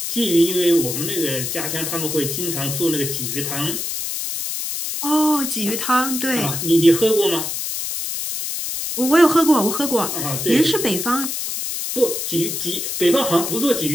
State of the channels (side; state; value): left; noise; hiss, 4 dB below the sound